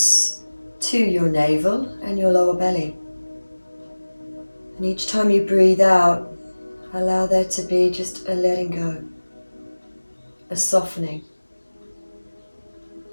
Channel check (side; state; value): both; inverted; correlation -1.00